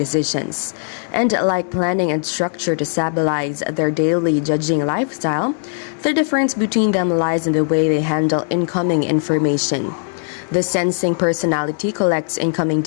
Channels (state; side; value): silent; right; 60 dB below the other